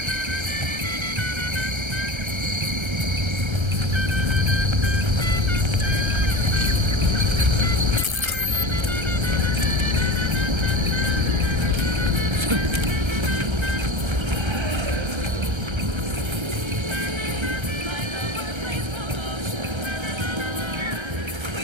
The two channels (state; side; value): late; left; 1.3 ms